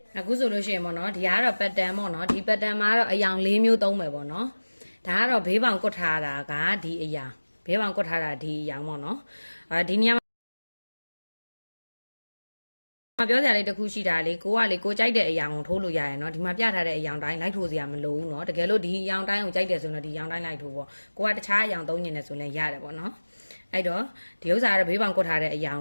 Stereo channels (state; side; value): inverted; both; correlation -1.00